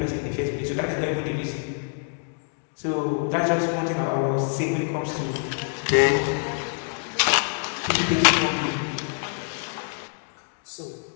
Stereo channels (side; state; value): right; silent; 55 dB below the other